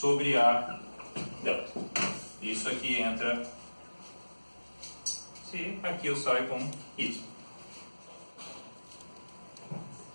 A delta. Isso aqui entra C, aqui eu saio com Y.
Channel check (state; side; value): inverted; both; correlation -1.00